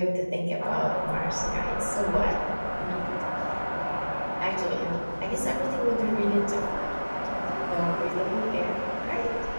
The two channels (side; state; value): both; inverted; correlation -1.00